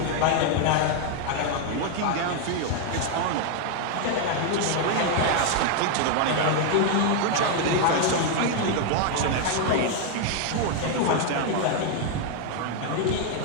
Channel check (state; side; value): different; both; correlation 0.00